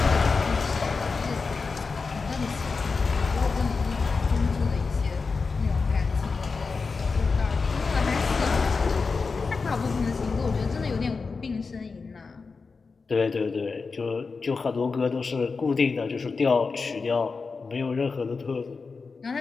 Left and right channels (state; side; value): quieter; right; 4.5 dB